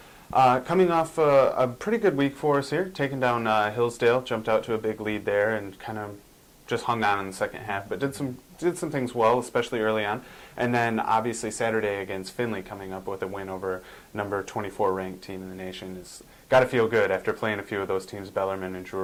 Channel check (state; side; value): identical; both; correlation 1.00